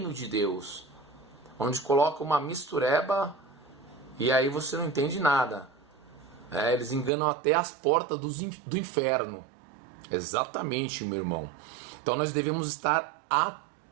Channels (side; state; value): left; drops out; at 7.1 s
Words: de Deus, onde coloca uma mistureba e aí você não entende nada. Eles enganam até as portas do inferno. Exatamente, meu irmão. Então nós devemos estar